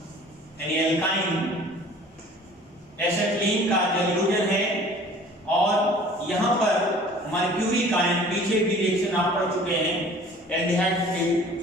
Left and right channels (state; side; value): normal; both; correlation 0.48